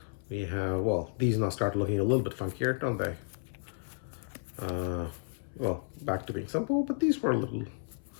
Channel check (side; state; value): right; silent; 56 dB below the other